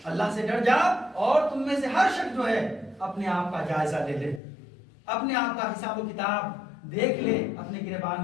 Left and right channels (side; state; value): right; drops out; at 4.4 s